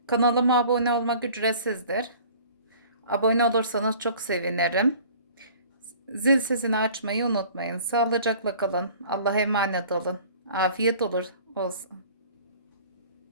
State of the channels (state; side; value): inverted; both; correlation -0.48